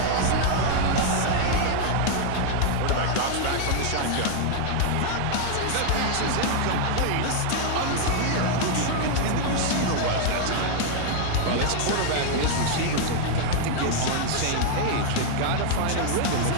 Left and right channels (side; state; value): both; different; correlation 0.00